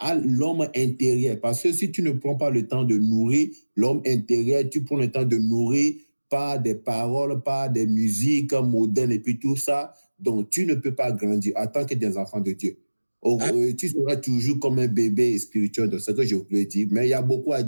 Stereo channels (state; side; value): inverted; both; correlation -1.00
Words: l'homme intérieur. Parce que si tu ne prends pas le temps de nourrir l'homme intérieur, tu prends le temps de nourrir par des paroles, par des musiques modernes et puis tout ça, donc tu ne peux pas grandir en tant que des enfants de Dieu. Tu seras toujours comme un bébé spirituel, c'est ce que je voulais dire. Mais il y a beaucoup à